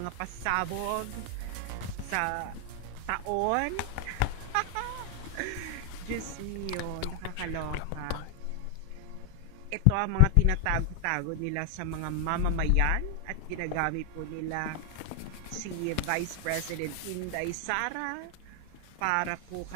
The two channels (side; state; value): both; different; correlation 0.00